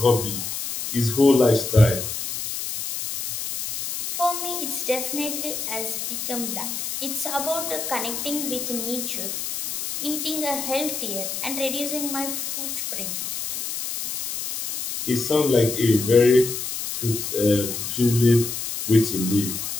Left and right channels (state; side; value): noise; left; hiss, 5 dB below the sound